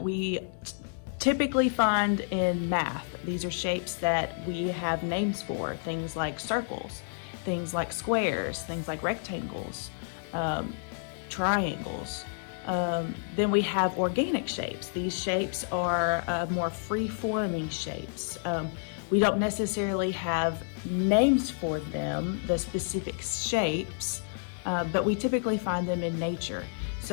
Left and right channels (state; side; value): silent; right; digital silence